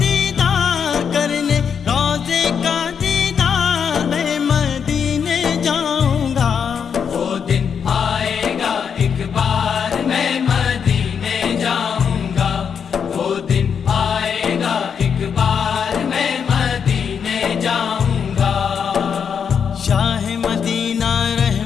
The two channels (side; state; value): right; quieter; 7.0 dB